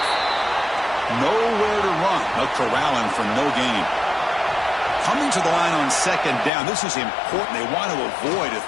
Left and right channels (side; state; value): right; drops out; at 6.5 s